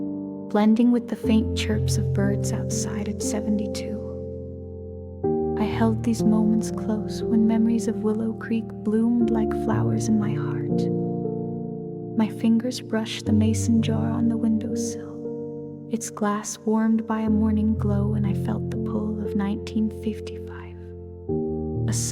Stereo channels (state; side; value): identical; both; correlation 1.00